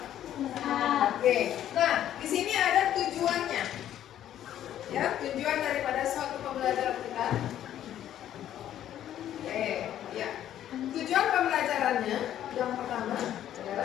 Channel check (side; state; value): right; quieter; 11.4 dB